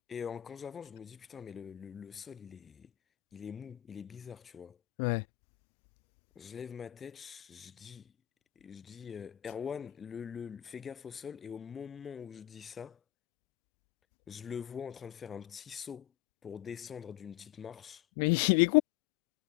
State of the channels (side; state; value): right; quieter; 15.0 dB